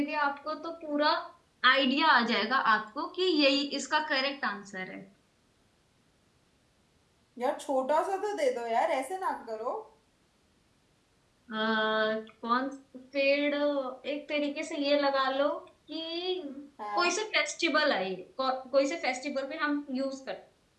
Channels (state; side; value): identical; both; correlation 1.00